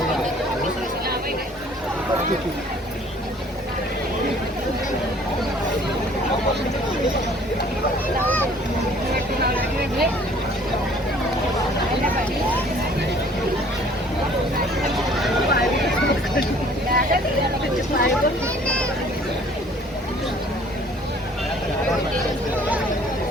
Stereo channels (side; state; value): both; normal; correlation 0.55